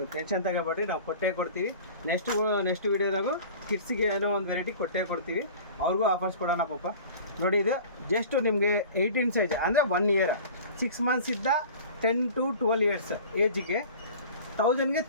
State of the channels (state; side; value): inverted; both; correlation -0.41